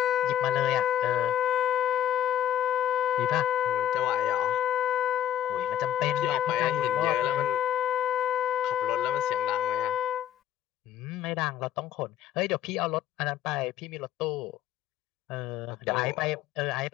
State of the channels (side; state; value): right; quieter; 11.0 dB